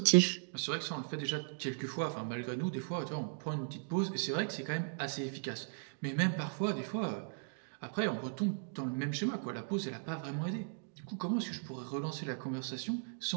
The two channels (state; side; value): silent; left; digital silence